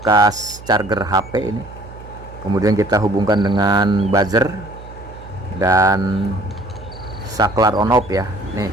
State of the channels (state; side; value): noise; right; hum, 16 dB below the sound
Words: charger HP ini. Kemudian kita hubungkan dengan buzzer dan saklar on off ya. Nih,